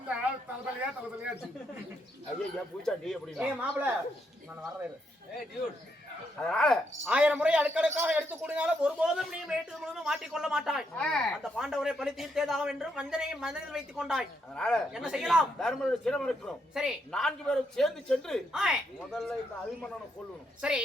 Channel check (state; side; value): normal; both; correlation 0.78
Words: தலைவலியா ஐயா பூச்சாண்டி எப்படி மாப்பிள நான் வர்றேன். அதனால 1000 முறை அடுக்கடுக்காக எடுத்து கூடினாலும் ஒருபோதும் நீ மேட்டு முழுவதும் மாட்டிக்கொள்ள மாட்டாய். அந்த பாண்டவரை பழி தீர்த்தேதாக என்று வஞ்சனையை மனதில் வைத்துக் கொண்டாய். அதனால என்ன செய்யலாம்? தர்மனுடைய சிரம் இருக்கிறோம். சரி 4 பேரும் சேர்ந்து சென்று முதல்ல இந்த அபிமன்னனை கொல்லணும். சரி